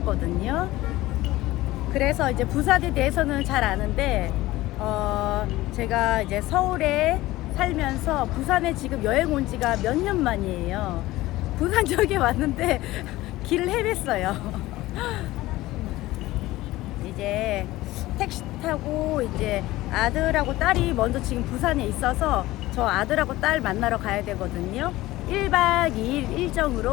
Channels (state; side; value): quieter; right; 17.6 dB